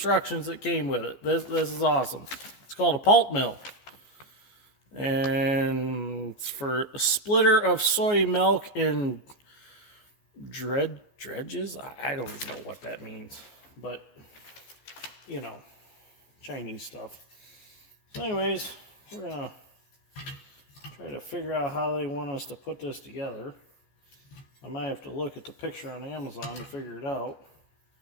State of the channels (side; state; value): right; late; 14 ms